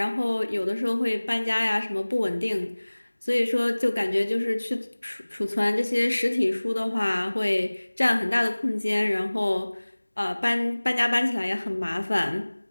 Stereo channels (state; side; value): inverted; both; correlation -1.00